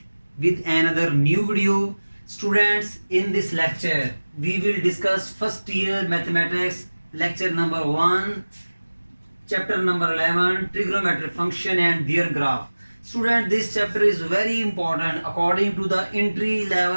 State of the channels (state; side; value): inverted; both; correlation -1.00